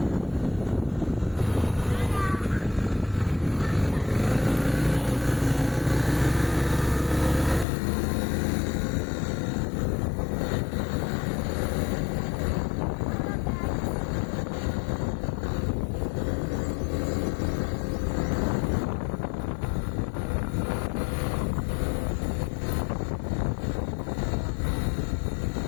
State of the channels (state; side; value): drops out; right; at 7.7 s